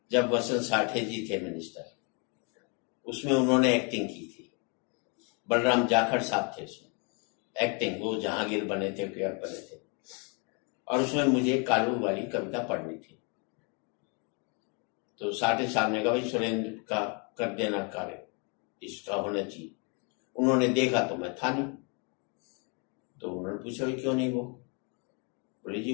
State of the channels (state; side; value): quieter; right; 34.9 dB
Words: जब वसंत साठे जी थे मिनिस्टर, उसमें उन्होंने एक्टिंग की थी। बलराम जाखड़ साहब थे उसमें एक्टिंग, वो जहांगीर बने थे, कुंवर बने थे। और उसमें मुझे कालू वाली कविता पढ़नी थी। तो साठे साहब ने कहा भाई सुरेंद्र का कर देना कार्य, इसका होना चाहिए। उन्होंने देखा तो मैं था नहीं, तो उन्होंने पूछा भाई क्यों नहीं? वो बोले